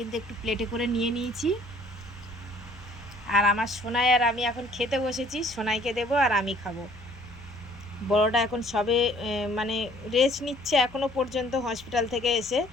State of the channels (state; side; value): noise; left; hum, 21 dB below the sound